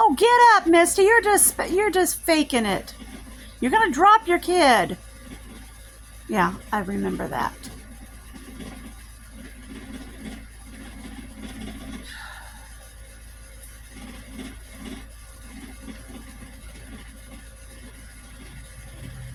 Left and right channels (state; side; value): identical; both; correlation 1.00